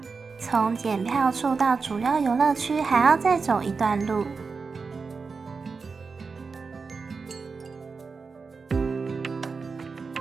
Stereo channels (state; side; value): quieter; left; 4.8 dB